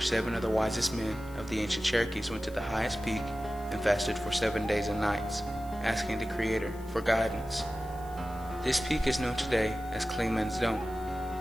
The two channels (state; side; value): noise; left; hiss, 23 dB below the sound